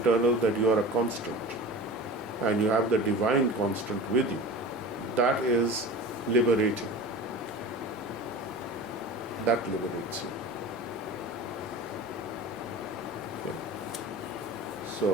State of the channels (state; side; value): normal; both; correlation 0.34